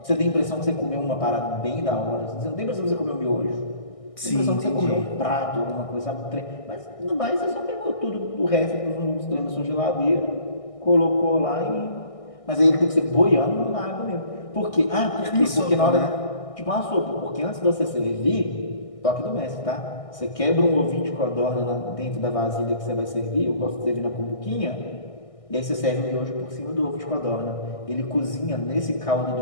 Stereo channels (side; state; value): right; late; 1.6 ms